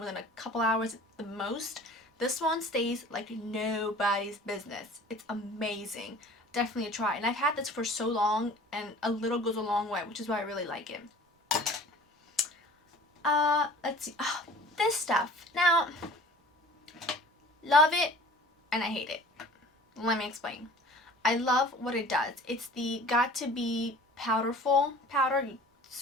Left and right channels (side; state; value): both; normal; correlation 0.46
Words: than a couple hours at the most. This one stays like nobody's business. It's amazing. Definitely a try. And I've had this for so long, and a little goes a long way, which is why I really like it. Let's see. Oh, this stuff. Now, love it and I hate it. Let me explain. I love what it does. It's the Got To Be powderful powder. You